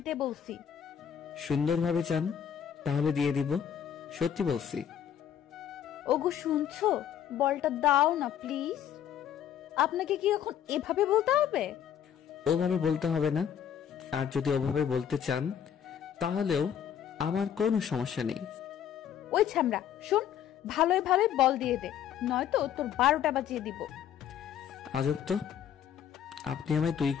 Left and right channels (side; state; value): right; quieter; 9.2 dB